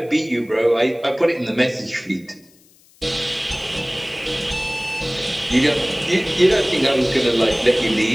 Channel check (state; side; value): noise; left; hiss, 30 dB below the sound